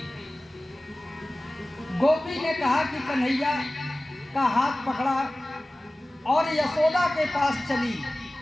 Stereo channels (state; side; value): normal; both; correlation 0.97